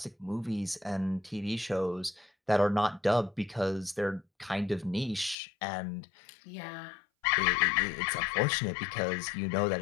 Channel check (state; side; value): drops out; right; at 5.4 s